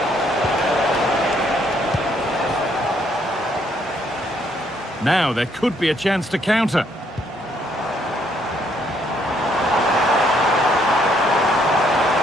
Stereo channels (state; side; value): normal; both; correlation 0.69